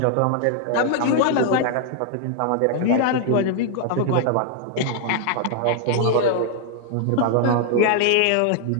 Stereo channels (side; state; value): both; different; correlation 0.00